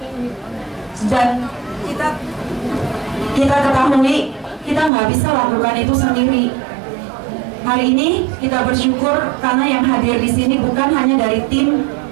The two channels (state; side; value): drops out; left; at 4.9 s